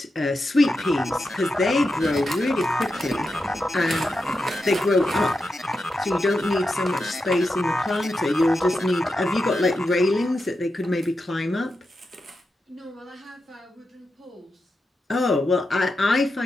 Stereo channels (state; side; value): normal; both; correlation 0.88